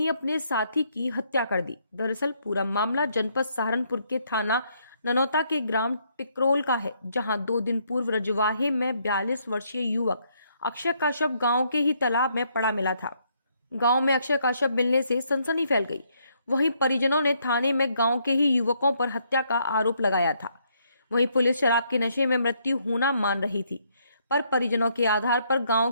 अपने साथी की हत्या कर दी। दरअसल पूरा मामला जनपद सहारनपुर के थाना ननौता के ग्राम टिकरोल का है, जहां 2 दिन पूर्व रजवाहे में 42 वर्षीय युवक अक्षय का शव गांव के ही तालाब में पड़ा मिला था। गांव में अक्षय का शव मिलने से सनसनी फैल गई। वहीं परिजनों ने थाने में गांव के ही युवकों पर हत्या का आरोप लगाया था। वहीं पुलिस शराब के नशे में मृत्यु होना मान रही थी, पर परिजनों के आधार पर गांव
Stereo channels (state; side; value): inverted; both; correlation -0.72